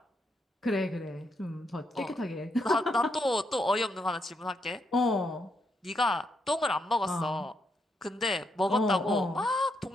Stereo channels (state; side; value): normal; both; correlation 0.79